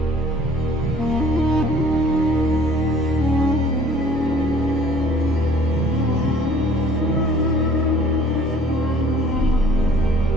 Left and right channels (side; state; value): both; normal; correlation 0.54